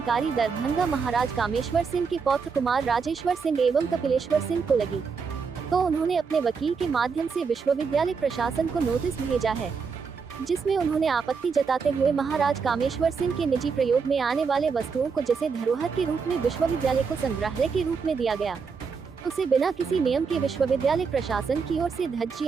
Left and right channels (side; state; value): left; quieter; 5.5 dB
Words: दरभंगा महाराज कामेश्वर सिंह के पौत्र कुमार राजेश्वर सिंह एवं कपिलेश्वर सिंह को लगी, तो उन्होंने अपने वकील के माध्यम से विश्वविद्यालय प्रशासन को नोटिस भेजा है, जिसमें उन्होंने आपत्ति जताते हुए महाराज कामेश्वर सिंह के निजी प्रयोग में आने वाले वस्तुओं को जिसे धरोहर के रूप में विश्वविद्यालय को संग्रहालय के रूप में दिया गया, उसे बिना किसी नियम के विश्वविद्यालय प्रशासन की ओर से